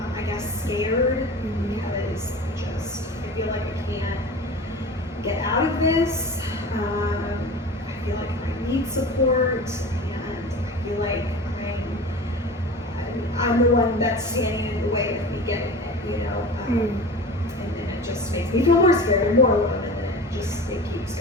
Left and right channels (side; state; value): both; normal; correlation 0.35